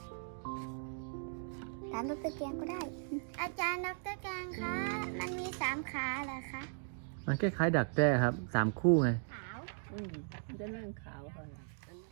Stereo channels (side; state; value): left; silent; digital silence